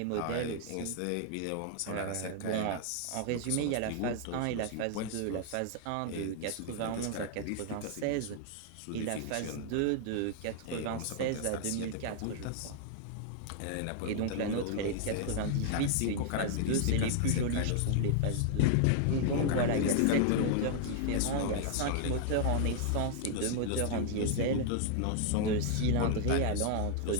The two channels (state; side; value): different; both; correlation -0.01